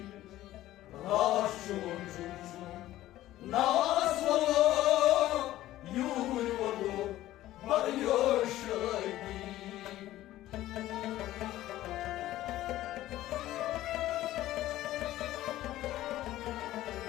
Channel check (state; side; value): quieter; right; 14.8 dB